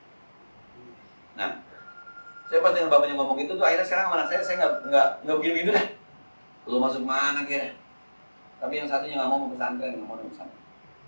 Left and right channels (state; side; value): inverted; both; correlation -1.00